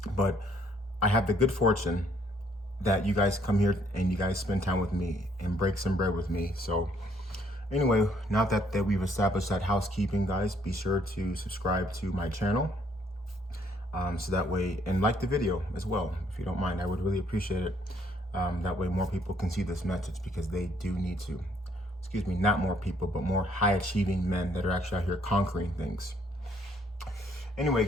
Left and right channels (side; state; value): both; normal; correlation 0.67